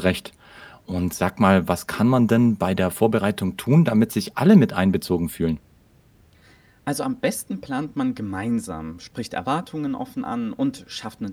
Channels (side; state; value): both; identical; correlation 1.00